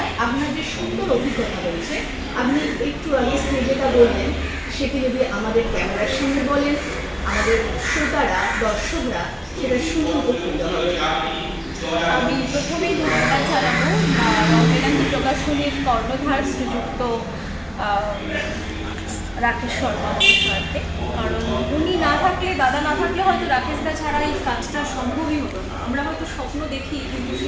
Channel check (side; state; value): both; identical; correlation 1.00